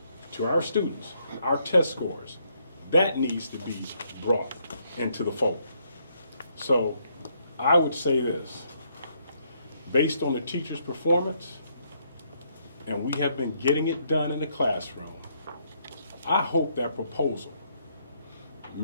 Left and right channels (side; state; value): both; inverted; correlation -0.72